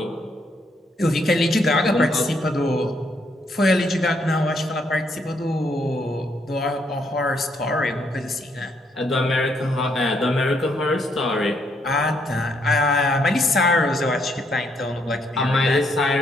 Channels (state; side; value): normal; both; correlation 0.73